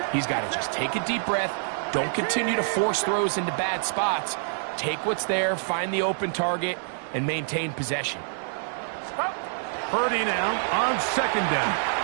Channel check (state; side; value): silent; left; digital silence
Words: He's got to just take a deep breath. Don't continue to force throws into bad spots. Take what's there, find the open target, and maintain possession. Purdy now on second down.